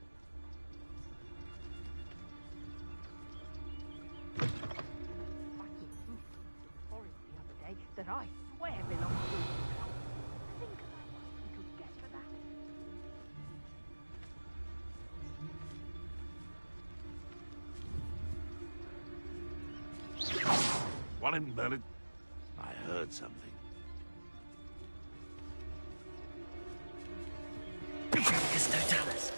Forest the other day that I swear belongs to. Think about what we could get for that. One in Merlin. I heard something. Bifurcus totalis.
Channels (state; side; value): inverted; both; correlation -1.00